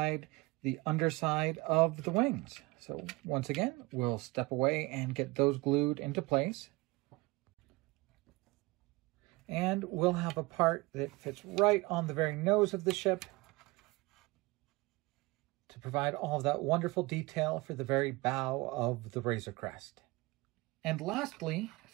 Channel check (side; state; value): left; quieter; 23.5 dB